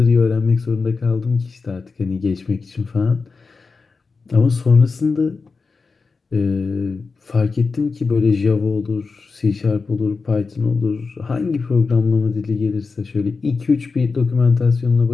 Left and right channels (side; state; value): right; quieter; 4.5 dB